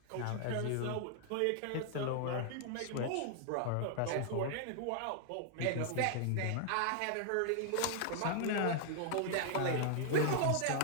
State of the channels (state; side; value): different; both; correlation 0.00